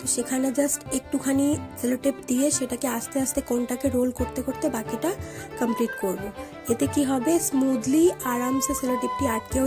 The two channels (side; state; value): both; identical; correlation 1.00